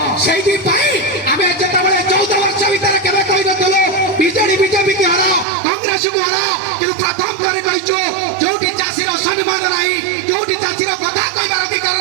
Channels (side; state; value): left; drops out; at 5.5 s